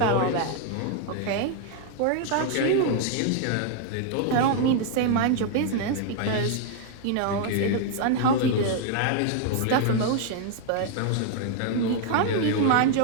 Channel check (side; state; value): both; different; correlation 0.00